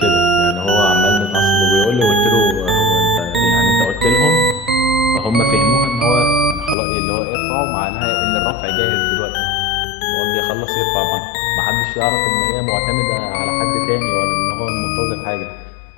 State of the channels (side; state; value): right; drops out; at 6.8 s